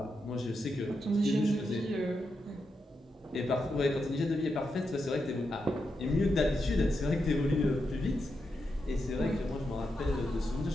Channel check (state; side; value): normal; both; correlation 0.85